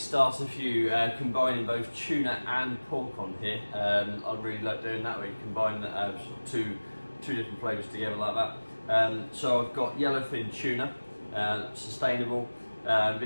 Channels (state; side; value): inverted; both; correlation -1.00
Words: for you, combining both tuna and pork on here. I really like doing that, where you combine two different flavours together like that. So I've got yellowfin tuna, sustainable.